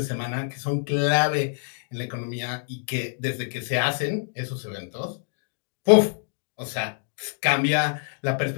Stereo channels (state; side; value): silent; right; digital silence